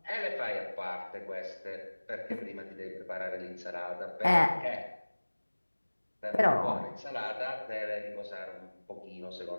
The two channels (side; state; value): both; inverted; correlation -1.00